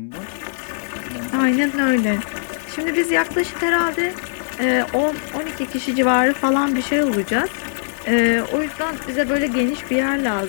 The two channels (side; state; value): right; silent; digital silence